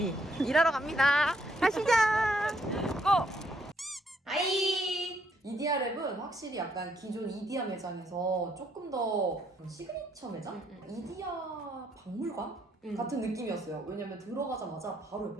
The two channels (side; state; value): both; normal; correlation 0.72